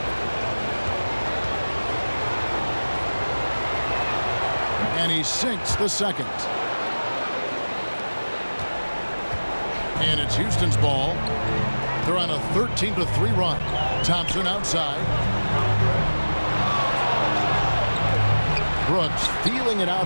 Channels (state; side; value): inverted; both; correlation -1.00